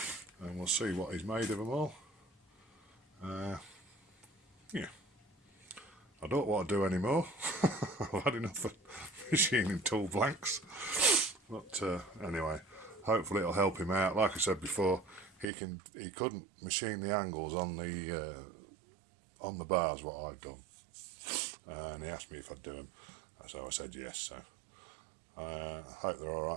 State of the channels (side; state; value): left; drops out; at 15.5 s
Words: and we'll see what he's made of them all. Yeah, I don't want to do any more. I've had enough of machining tool blanks, but anyway, hopefully it'll help him out. Like I said before, he couldn't machine the angles on the bars what I'd done, and he asked me if I'd do them, so I said yes. So I hope they're all